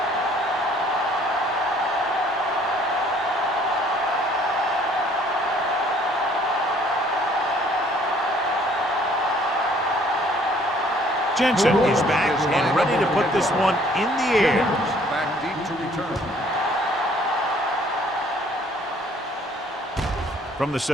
Jensen is back and ready to put this one in the air. Back deep to return. From the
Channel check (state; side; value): normal; both; correlation 0.59